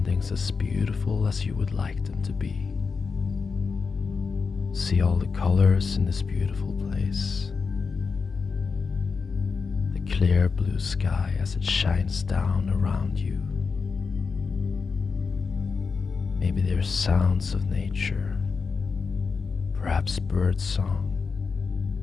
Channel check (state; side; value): quieter; right; 5.0 dB